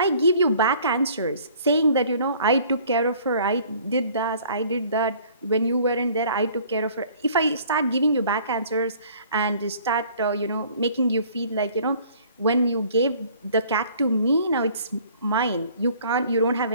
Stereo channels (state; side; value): inverted; both; correlation -0.54